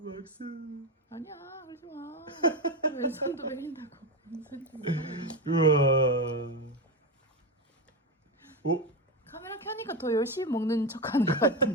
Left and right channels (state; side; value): normal; both; correlation 0.14